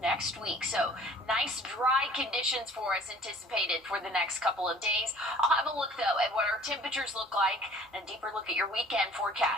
week. So nice dry conditions for us anticipated for the next couple of days. I'll have a look though at what our temperatures look like and a deeper look at your weekend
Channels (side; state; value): both; normal; correlation 0.51